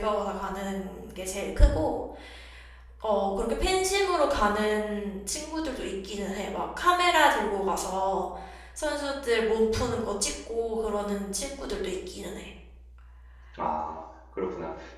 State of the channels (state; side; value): identical; both; correlation 1.00